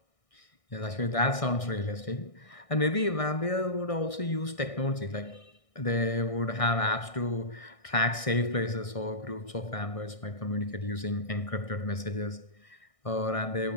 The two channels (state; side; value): late; right; 1.6 ms